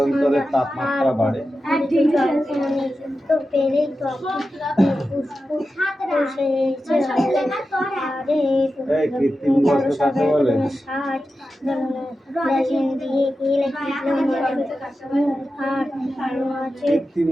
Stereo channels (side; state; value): both; normal; correlation 0.92